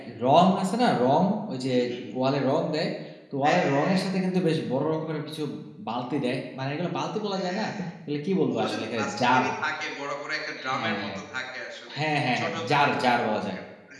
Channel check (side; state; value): both; identical; correlation 1.00